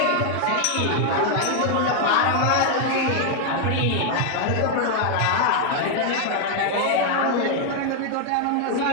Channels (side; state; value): both; different; correlation 0.00